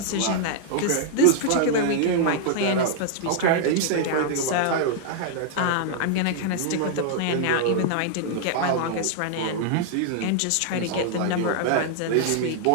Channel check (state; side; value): different; both; correlation -0.01